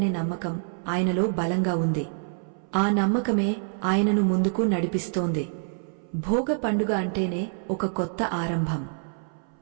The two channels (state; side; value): silent; left; 61 dB below the other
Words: నమ్మకం ఆయనలో బలంగా ఉంది. ఆ నమ్మకమే ఆయనను ముందుకు నడిపిస్తోంది. భోగ పండుగ అంటేనే ఒక కొత్త